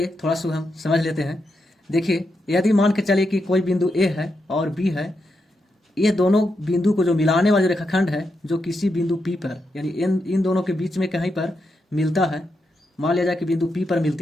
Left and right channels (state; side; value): normal; both; correlation 0.84